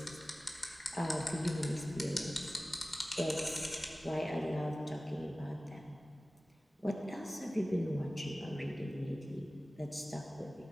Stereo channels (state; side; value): normal; both; correlation 0.97